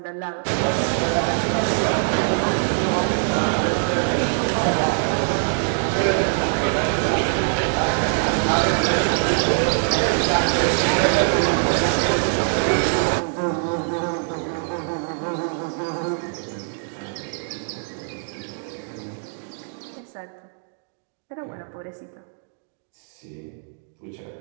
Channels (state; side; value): silent; left; digital silence